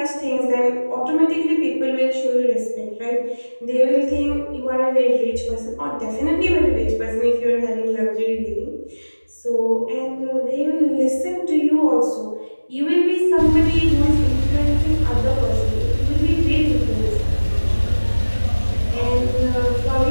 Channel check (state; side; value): inverted; both; correlation -1.00